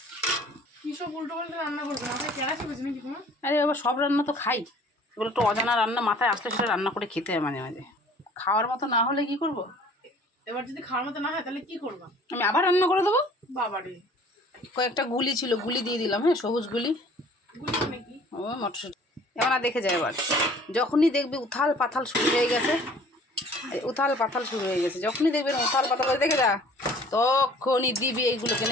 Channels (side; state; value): both; normal; correlation 0.52